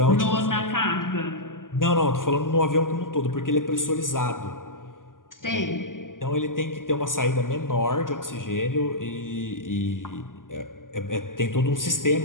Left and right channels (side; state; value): right; late; 0.89 ms